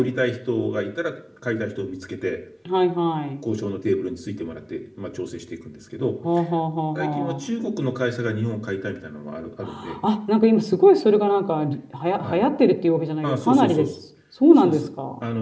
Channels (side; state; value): both; identical; correlation 1.00